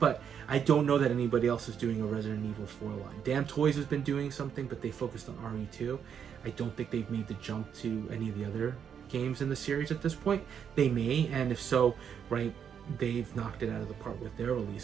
I don't know that anybody else is doing a Resident Evil 4 line. Damn Toys has been doing something, but they focused on RE2. I don't think they've made the jump to any of the other games in the series at this point. They may, and if so, right, they've knocked it out of the park with their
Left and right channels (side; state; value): left; quieter; 7.9 dB